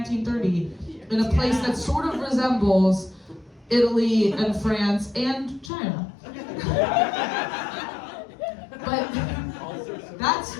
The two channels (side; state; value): right; drops out; at 5.7 s